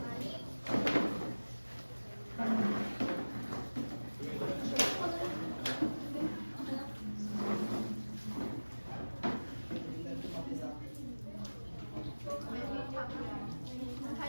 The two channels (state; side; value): inverted; both; correlation -1.00